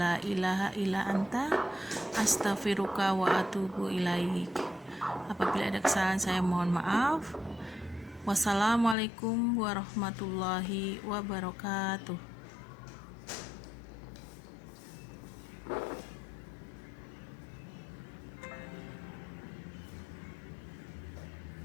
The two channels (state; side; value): drops out; right; at 9.0 s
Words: ilaha illa anta astaghfiruka wa atubu ilaik. Apabila ada kesalahan saya mohon maaf. Wassalamualaikum warahmatullahi wabarakatuh.